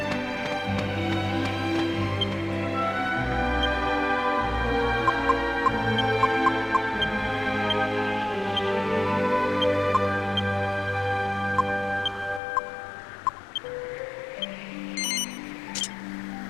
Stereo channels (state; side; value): drops out; right; at 12.4 s